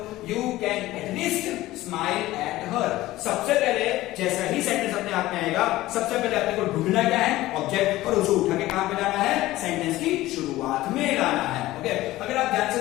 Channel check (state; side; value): quieter; right; 16.8 dB